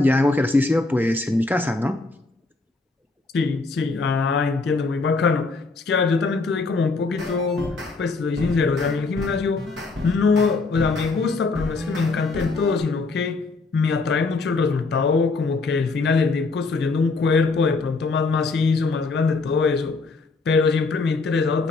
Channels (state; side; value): quieter; right; 3.8 dB